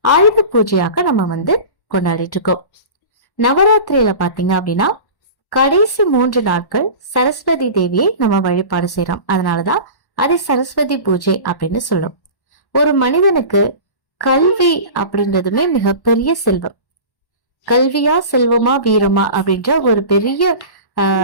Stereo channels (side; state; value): right; late; 1.1 ms